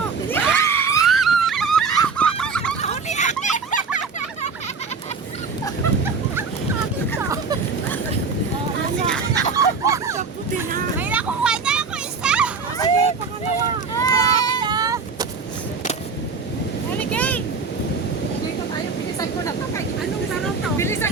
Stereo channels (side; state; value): left; quieter; 4.9 dB